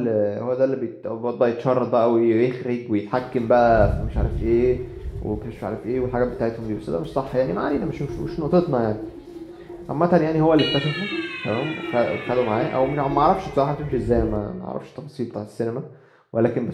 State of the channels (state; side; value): identical; both; correlation 1.00